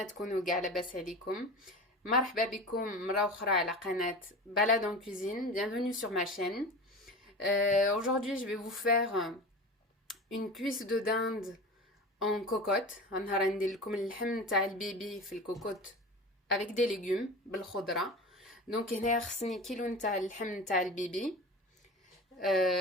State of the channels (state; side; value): normal; both; correlation 0.32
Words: تكونوا كاع لاباس عليكم. مرحبا بكم مرة أخرى على قناة Balade en cuisine. Bienvenue sur ma chaîne. Aujourd'hui, je vais vous faire une cuisse de dinde en cocotte. غنهار ندير لكم اللحم تاع البيبي في الكوكوت avec des légumes بالخضرة. دونك هنايا خصني كيلو نتاع اللحم تاع البيبي.